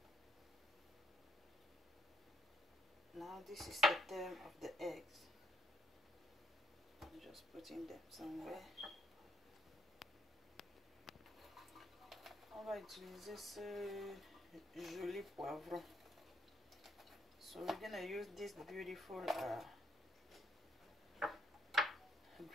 Now this is the time of the eggs. I'm just putting them somewhere. On va utiliser ce joli poivron. So we're gonna use this beautiful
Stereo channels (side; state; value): both; normal; correlation 0.70